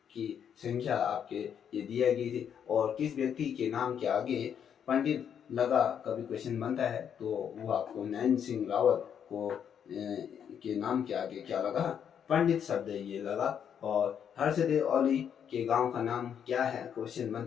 की संख्या आपके ये दिया गई थी। और किस व्यक्ति के नाम के आगे पंडित लगा कभी क्वेश्चन बनता है तो वो आपको नैन सिंह रावत को के नाम के आगे क्या लगा? पंडित शब्द ये लगा। और हर्षदेव औली के गांव का नाम क्या है? क्वेश्चन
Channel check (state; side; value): quieter; right; 8.3 dB